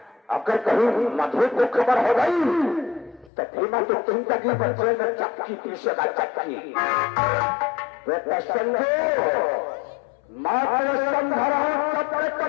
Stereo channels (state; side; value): drops out; right; at 3.3 s